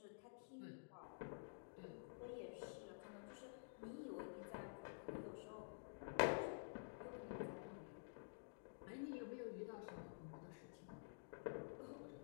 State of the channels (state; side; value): silent; right; digital silence